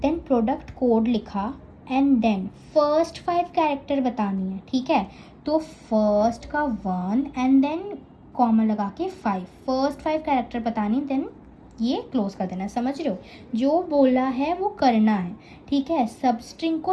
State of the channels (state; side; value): identical; both; correlation 1.00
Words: then product code लिखा, एंड देन फर्स्ट 5 कैरेक्टर बतानी है, ठीक है। तो फर्स्ट का 1 एंड देन कॉमा लगा के 5, फर्स्ट 5 कैरेक्टर बतानी, देन ये क्लोज कर देना, समझ रहे हो। जो बोला है वो करना है, ठीक है। सब स्ट्रिंग